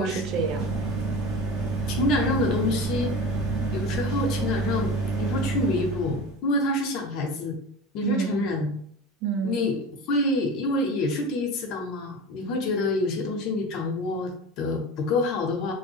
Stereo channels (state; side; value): normal; both; correlation 0.32